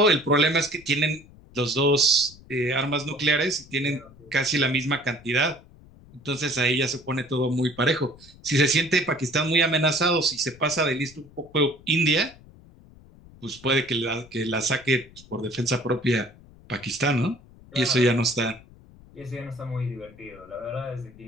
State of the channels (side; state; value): left; noise; rumble, 23 dB below the sound